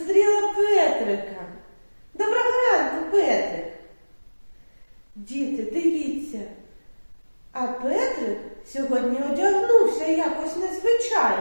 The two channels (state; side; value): inverted; both; correlation -1.00